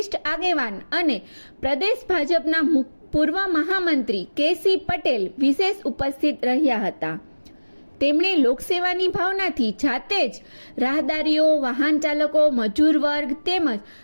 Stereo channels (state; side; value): inverted; both; correlation -1.00